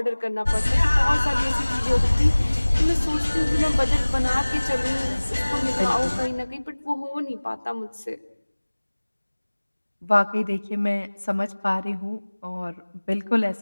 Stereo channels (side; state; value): both; inverted; correlation -1.00